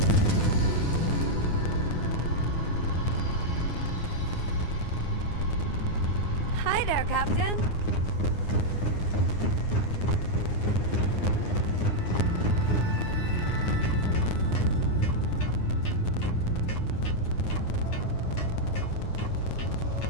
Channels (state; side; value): late; right; 9.7 ms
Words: Hi there, Captain.